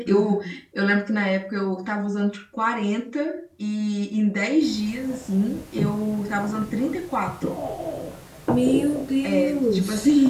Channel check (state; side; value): identical; both; correlation 1.00